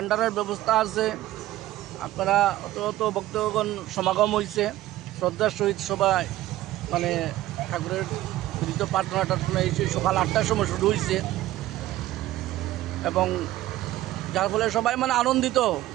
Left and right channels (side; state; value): left; quieter; 15.4 dB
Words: ব্যবস্থা আছে। আপনারা অত অত ভক্তগণ সমাগম হয়েছে, শ্রদ্ধার সহিত সবাই মানে ঠাকুরের প্রীত প্রার্থনা টার্থনা এসে সকাল 8টার সময় শুরু হয়েছে এবং যার ফলে সবাই মানে আনন্দিত।